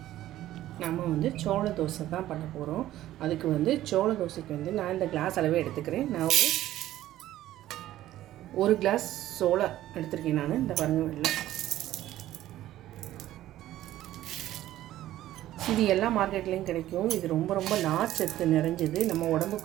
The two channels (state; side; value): quieter; left; 14.0 dB